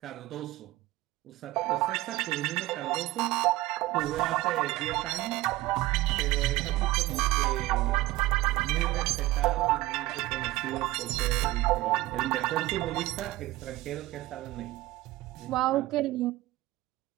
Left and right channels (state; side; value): quieter; left; 17.6 dB